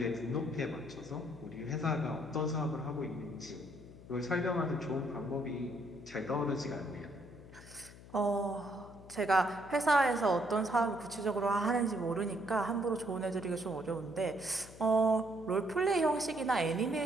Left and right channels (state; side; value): noise; left; hum, 18 dB below the sound